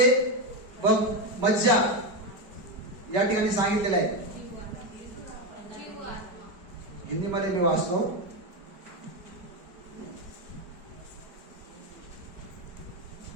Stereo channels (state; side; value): late; left; 5.0 ms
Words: व मज्जा या ठिकाणी सांगितलेलं आहे. हिंदीमध्ये मी वाचतो.